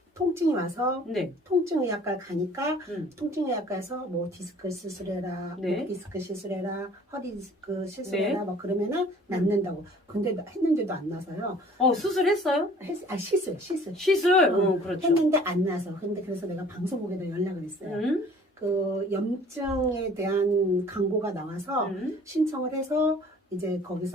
통증이 와서 네. 통증의학과 가니까 음. 통증의학과에서 뭐 디스크 시술해라, 네. 목 디스크 시술해라, 허리 디스크 시술해라 네. 뭐 그러면은 낫는다고. 근데 했는데도 안 나서요. 수술했어요? 시술. 시술? 그렇죠. 했는데 안 나서. 근데 그래서 내가 방송국에다 연락을 했어요. 그 염증에 대한 광고가 나와서 신청을 해서 이제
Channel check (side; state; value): both; normal; correlation 0.51